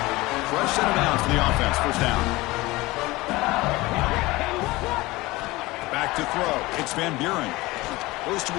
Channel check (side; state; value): right; quieter; 20.6 dB